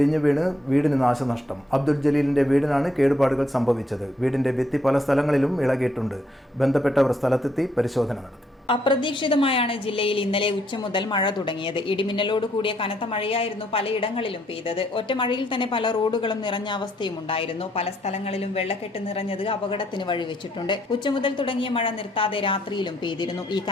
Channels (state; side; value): normal; both; correlation 0.71